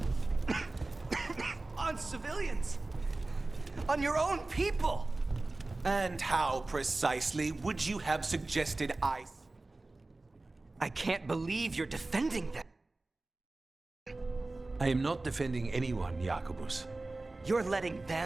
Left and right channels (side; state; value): left; quieter; 3.1 dB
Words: on civilians. On your own people. And how precisely would you have suggested I can't believe you're defending them. I am not defending anyone, Jacobus. You're letting